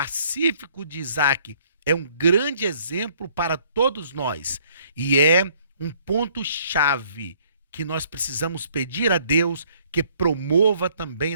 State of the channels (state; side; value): inverted; both; correlation -0.62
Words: de Isaac é um grande exemplo para todos nós e é um ponto-chave que nós precisamos pedir a Deus que promova também